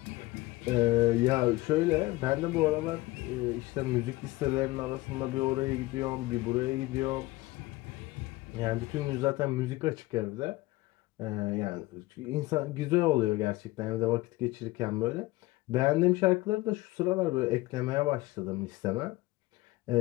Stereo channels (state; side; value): quieter; right; 19.8 dB